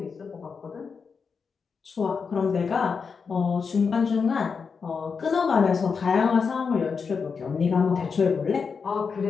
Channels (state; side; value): quieter; right; 5.5 dB